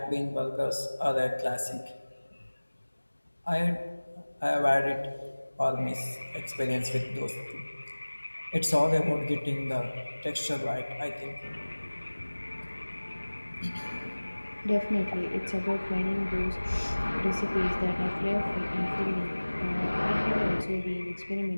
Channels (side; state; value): both; inverted; correlation -1.00